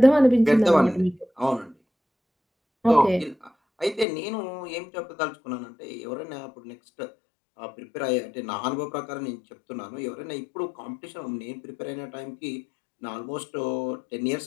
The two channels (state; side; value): drops out; right; at 4.0 s